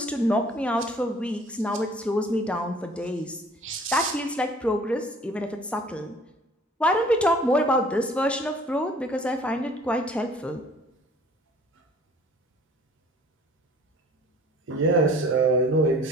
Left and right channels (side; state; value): both; normal; correlation 0.52